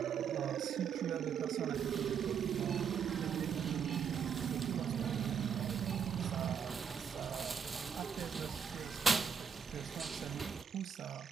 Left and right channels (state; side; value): quieter; left; 7.3 dB